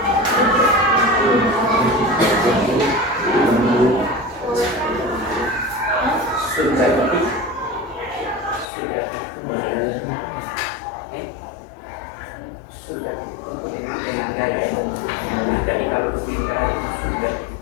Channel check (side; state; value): right; drops out; at 8.7 s